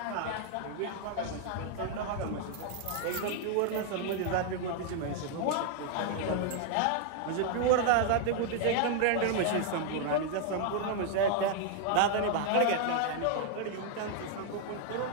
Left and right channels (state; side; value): different; both; correlation 0.00